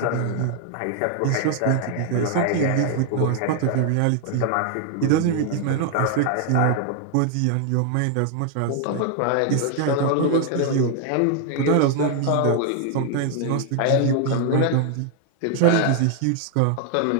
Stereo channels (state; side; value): different; both; correlation 0.00